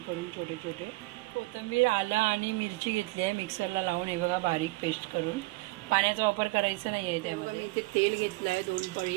करून छोटे छोटे. कोथिंबीर, आलं आणि मिरची घेतली आहे मिक्सरला लावून. हे बघा बारीक पेस्ट करून. पाण्याचा वापर करायचा नाही आहे त्यामध्ये. इथे तेल घेतलं आहे 2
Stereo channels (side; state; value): left; quieter; 23.4 dB